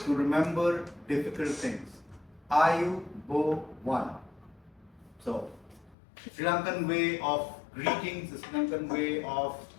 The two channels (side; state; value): right; drops out; at 6.0 s